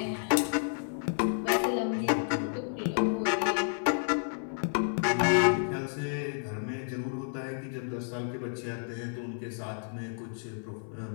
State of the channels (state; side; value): silent; right; 57 dB below the other